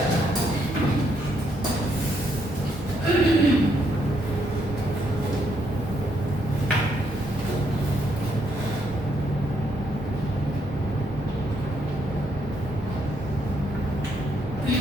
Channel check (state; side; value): normal; both; correlation 0.74